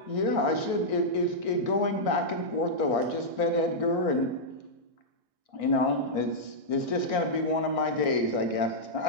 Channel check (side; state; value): left; late; 1.6 ms